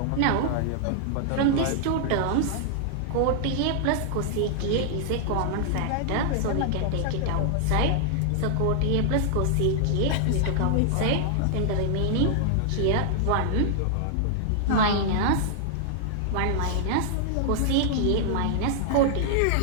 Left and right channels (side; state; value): both; different; correlation -0.01